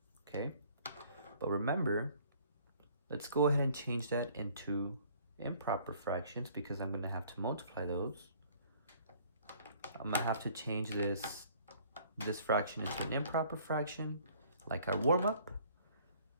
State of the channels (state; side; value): inverted; both; correlation -0.57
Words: okay? But remember, let's go ahead and change that into improper fractions because I'm going to have to multiply those. I'm going to have to change this fraction into an improper fraction, like our warm-up.